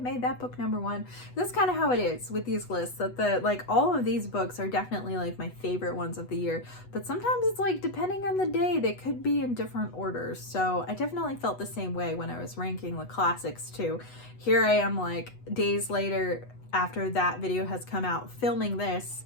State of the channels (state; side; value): late; right; 8.1 ms